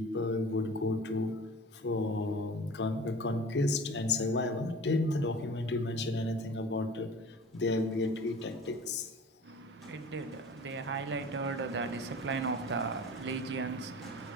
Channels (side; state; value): both; normal; correlation 0.41